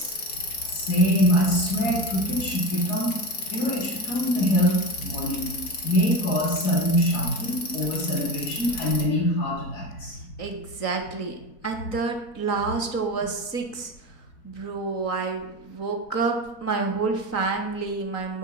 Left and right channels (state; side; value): late; right; 4.6 ms